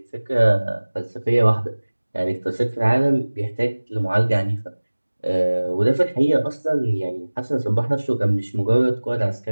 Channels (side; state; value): both; inverted; correlation -1.00